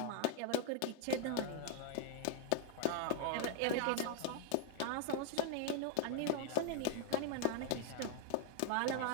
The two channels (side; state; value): both; different; correlation 0.00